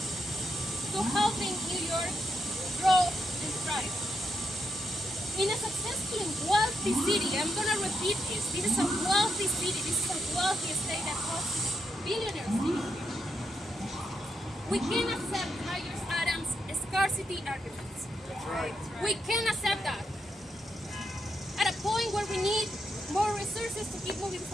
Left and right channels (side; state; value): both; normal; correlation 0.82